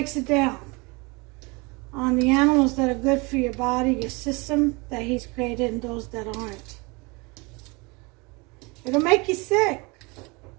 it down on the animals that are good for your body, your system that He's created, and those that aren't. It'll make you sick.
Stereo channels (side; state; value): left; quieter; 27.4 dB